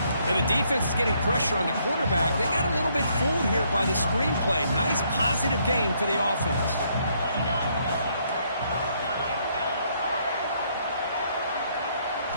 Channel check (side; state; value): both; inverted; correlation -0.70